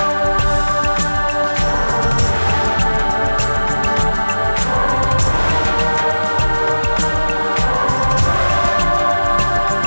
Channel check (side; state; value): both; inverted; correlation -1.00